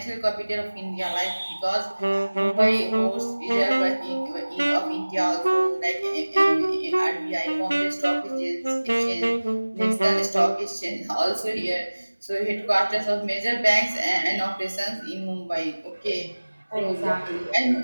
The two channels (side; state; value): both; inverted; correlation -1.00